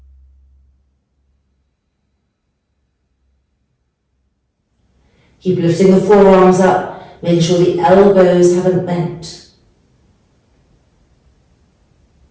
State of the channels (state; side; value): identical; both; correlation 1.00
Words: Keep lifting the forearms up, making sure the elbows haven't bent.